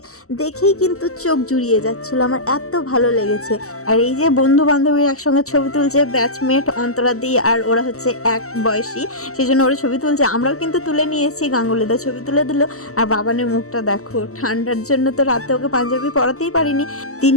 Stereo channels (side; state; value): right; late; 0.64 ms